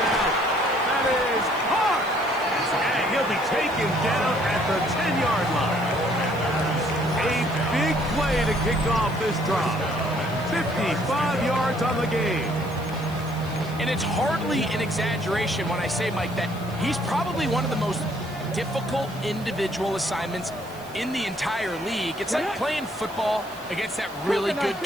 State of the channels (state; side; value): noise; right; hiss, 21 dB below the sound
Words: out. That is hard. And he'll be taken down at the 10-yard line. A big play to kick off this drive. 55 yards on the game. And it's hardly an exaggeration when I say, Mike, that he's probably one of the most difficult individual assignments in the entire league. It's like playing football against that really good